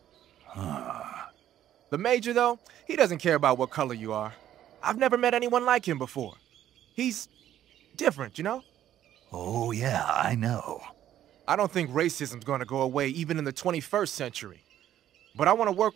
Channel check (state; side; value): quieter; left; 11.6 dB